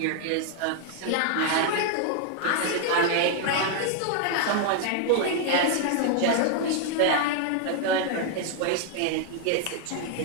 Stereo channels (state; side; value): different; both; correlation 0.00